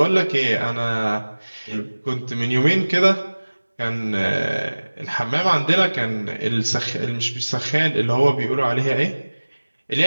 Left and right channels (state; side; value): inverted; both; correlation -1.00